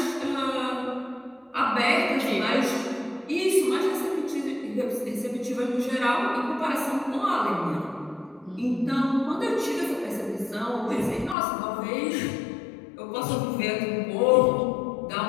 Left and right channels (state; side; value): drops out; right; at 11.4 s